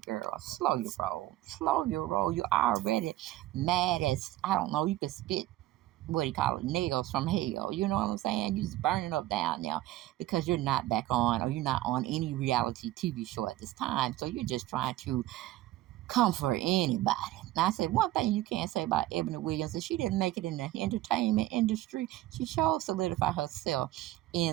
slow your roll. Slow your roll. You're already mad as, I don't know, you could spit, what do you call it, nails from hell. You know what I'm saying? You're just burning up down now because you're not back on, or you're not on any reality TV show at this time. So you're just trying to comfort anybody. Now, I said one thing you can't say about Ebony Williams is she didn't make it in the entertainment industry. She sure solidified herself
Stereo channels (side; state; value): left; quieter; 15.6 dB